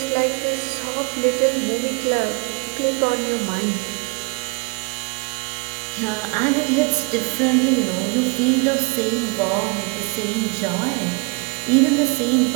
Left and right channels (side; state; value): left; quieter; 31.0 dB